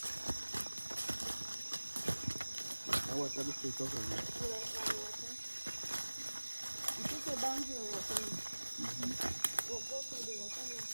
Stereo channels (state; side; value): inverted; both; correlation -1.00